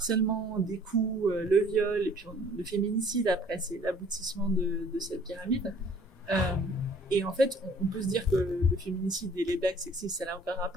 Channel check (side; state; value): both; normal; correlation 0.55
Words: des coups, le viol, et puis le féminicide, après, c'est l'aboutissement de cette pyramide. Et en fait, on peut se dire que le féminicide et les blagues sexistes, ça n'a aucun